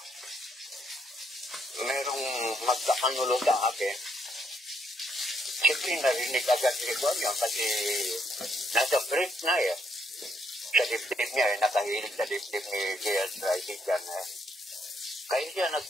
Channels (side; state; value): both; normal; correlation 0.74